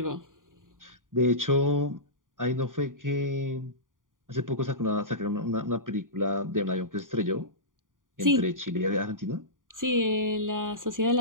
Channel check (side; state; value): left; late; 0.89 ms